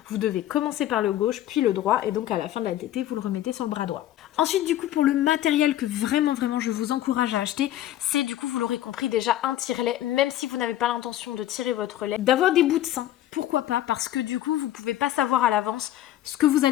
vous devez commencer par le gauche puis le droit. Et donc à la fin de la tétée, vous le remettez sur le bras droit. Ensuite, du coup, pour le matériel que vraiment je vous encourage à acheter, c'est du coup, vous l'aurez compris déjà, un tire-lait, même si vous n'avez pas l'intention de tirer votre lait, d'avoir des bouts de sein. Pourquoi pas? Parce que du coup, vous pouvez pas savoir à l'avance ce que vous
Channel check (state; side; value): quieter; right; 13.2 dB